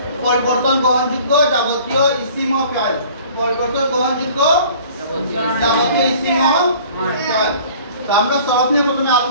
পরিবর্তন গ্রহণযোগ্য যাবতীয় ইসিম ও ফিআল। পরিবর্তন গ্রহণযোগ্য যাবতীয় ইসিম ও ফিআল। তো আমরা সরফ নিয়ে প্রথমে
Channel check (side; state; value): both; inverted; correlation -0.50